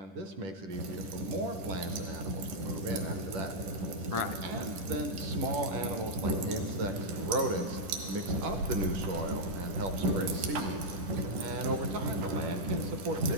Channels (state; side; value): late; left; 10 ms